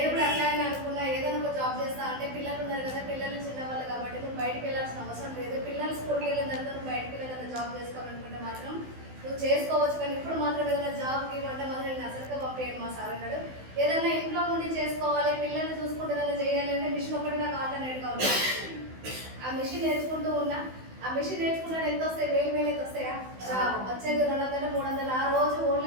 కూడా అట్లానే అనుకున్నా, ఏదైనా ఒక జాబ్ చేస్తా అంటే పిల్లలు ఉన్నారు కదా, పిల్లలు చిన్నవాళ్ళు కాబట్టి నువ్వు బయటకు వెళ్ళాల్సిన అవసరం లేదు. పిల్లలు స్కూల్కి వెళ్ళిన తర్వాత నువ్వు బయటకు వెళ్ళి జాబ్ చేసుకోవాలనుకుంటే మాత్రం నువ్వు చేసుకోవచ్చు. కానీ ఇప్పుడు మాత్రం ఏదైనా జాబ్కి ఇవ్వంటే మాత్రం నేను అసలుగా పంపేయండి మా సార్ అన్నాడు. ఏదైనా ఇంట్లో ఉండి చేసుకోవాలి, పిల్లల్ని చూసుకుంటే ఏదైనా చేయాలి అంటే మిషన్ ఒకటి నాకు ఆల్టర్నేట్గా ఉంది. ఆ మిషన్ నేర్చుకుంటూ ఉన్నా. ఆ మిషన్ నేర్చుకున్నాడు ఎంత వస్తాయి? 1000 అయితే వస్తాయా? వచ్చేది 200, 300. ఆ రోజు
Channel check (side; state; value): left; late; 16 ms